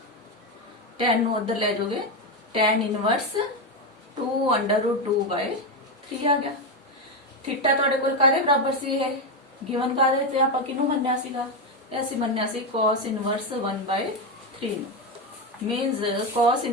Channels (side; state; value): both; normal; correlation 0.10